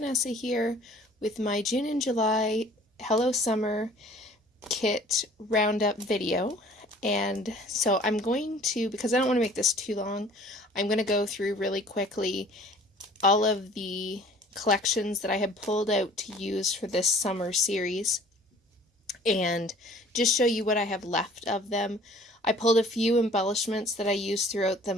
here with my June and July Hello Summer Kit Roundup video. And so I'm going to, because I don't want to make this too long, I'm going to go through really quickly all of the collections that I have pulled out to use for this summer series and just show you what I have left of them. I pulled a few embellishments that I used throughout the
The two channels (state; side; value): normal; both; correlation 0.51